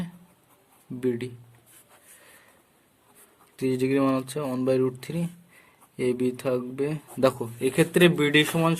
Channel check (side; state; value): both; identical; correlation 1.00